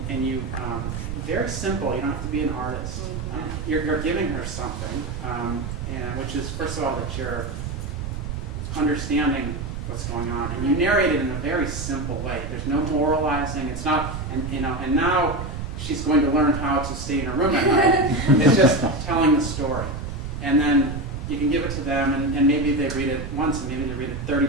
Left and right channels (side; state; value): right; noise; rumble, 7 dB below the sound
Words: you very simple. You don't have to be an artist. You're giving her something, and which is, first of all, that you're understanding what's going on, and you narrate it in a very simple way. There's no moralizing. It's not, and now she's going to learn how to stay in her room at night. It's just telling the story. And then you can give it to them, and maybe they read it once, and maybe they read it 30